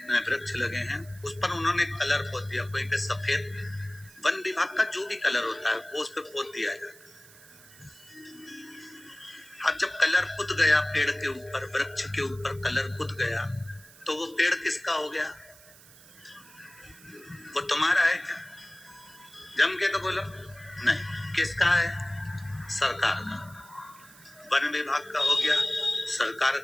वृक्ष लगे हैं, उस पर उन्होंने कलर पोत दिया, कोई पे सफेद, वन विभाग का जो भी कलर होता है वो उस पर पोत दिया जाता है। अब जब कलर पुत गया पेड़ के ऊपर, वृक्ष के ऊपर कलर पुत गया, तो वो पेड़ किसका हो गया? वो तुम्हारा है क्या? जम के तो बोलो नहीं। किसका है? सरकार का। वन विभाग का हो गया, सरकार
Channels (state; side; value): noise; right; hiss, 22 dB below the sound